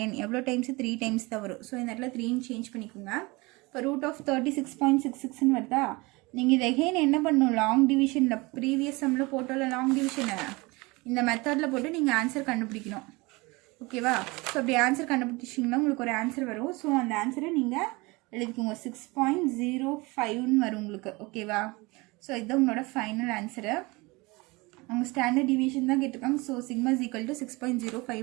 எவ்வளோ டைம்ஸ், 3 டைம்ஸ் தான் வரும். ஸோ இந்த இடத்துல 3ன்னு சேஞ்ச் பண்ணிக்கோங்க. இப்போ ரூட் ஆஃப் 36.66ன்னு வருதா? நீங்கள் இது எகெயின் என்ன பண்ணணும், லாங் டிவிஷனில் ப்ரீவியஸ் சம்மில் போட்டோம்ல லாங் டிவிஷனை, இந்த மெத்தடில் போட்டு நீங்கள் ஆன்சர் கண்டுபிடிக்கணும். ஓகேவா? ஸோ அப்படி ஆன்சர் கண்டுபிடிச்சிங்கன்னா உங்களுக்கு ஒரு ஆன்சர் வரும். ஸோ அந்த ஆன்சரை நீங்கள் எழுதிக்கோங்க, 6.05ன்னு வரும் உங்களுக்கு. ஓகேவா? ஸோ இதுதான் உங்களோட ஃபைனல் ஆன்சரு. அவங்க ஸ்டாண்டர்ட் டிவிஷன் தான் கேட்டிருக்காங்க. So sigma is equal to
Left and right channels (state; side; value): quieter; left; 24.5 dB